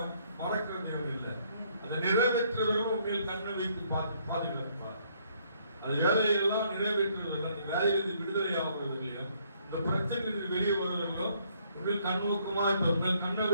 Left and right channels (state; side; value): inverted; both; correlation -0.67